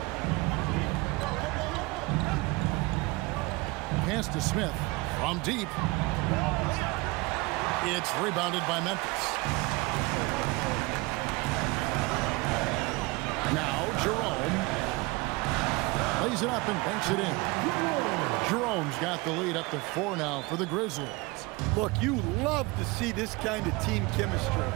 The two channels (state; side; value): quieter; left; 24.2 dB